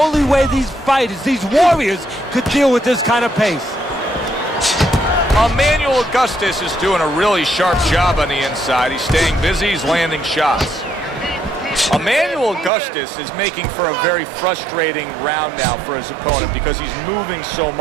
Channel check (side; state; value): left; drops out; at 12.7 s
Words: way these fighters, these warriors, could deal with this kind of pace. Emanuel Augustus is doing a really sharp job on the inside. He's staying busy, he's landing shots. Emanuel Augustus is making for a very frustrating round now for his opponent because he's moving so